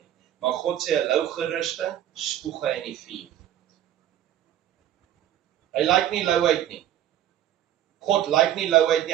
Maar God sê 'n lou gerusting, spoeg hy in die vuur. Hy lyk nie louheid nie. God lyk nie louheid nie,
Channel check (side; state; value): left; quieter; 11.7 dB